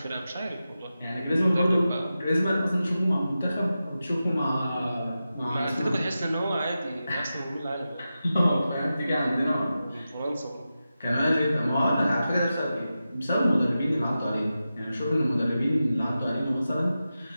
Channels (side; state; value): both; inverted; correlation -0.92